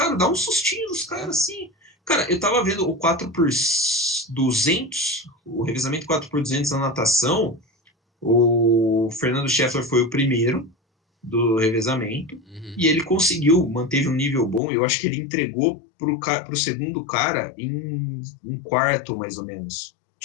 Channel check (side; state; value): right; drops out; at 14.6 s